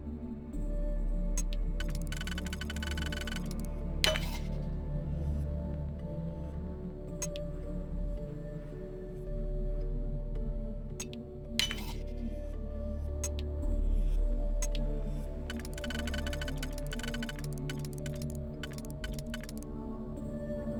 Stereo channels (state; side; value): identical; both; correlation 1.00